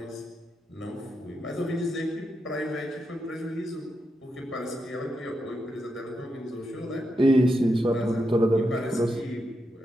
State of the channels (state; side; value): normal; both; correlation 0.85